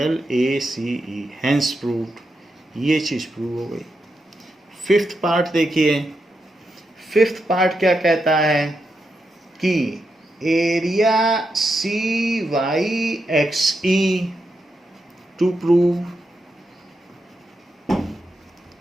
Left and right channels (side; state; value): both; normal; correlation 0.85